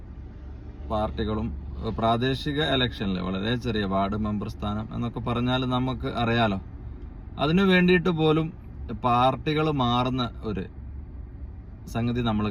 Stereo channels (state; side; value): identical; both; correlation 1.00